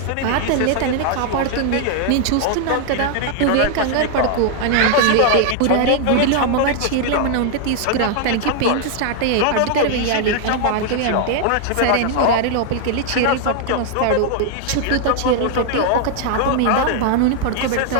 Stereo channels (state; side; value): different; both; correlation 0.00